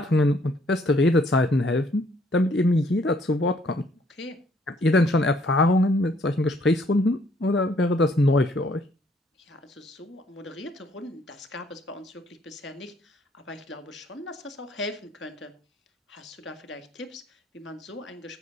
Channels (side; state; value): both; normal; correlation 0.65